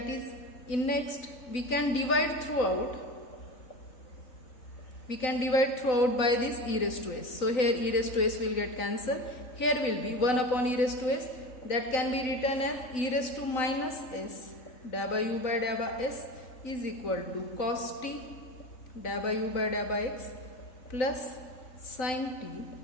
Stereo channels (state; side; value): late; right; 3.9 ms